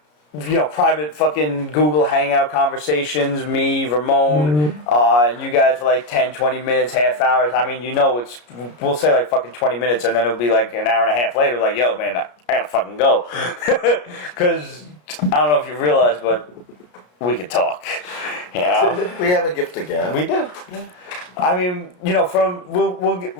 private fucking Google Hangout conversations, me, Ramon, and you guys for like 10, 20 minutes, half hours. I mean, we'll say like fucking 20 minutes and then it'll be like an hour and a half later, like, yo, man, I gotta fucking go. Because I don't know if you realize, but we can talk. We have a gift to give. We do. I mean,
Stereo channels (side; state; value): right; late; 33 ms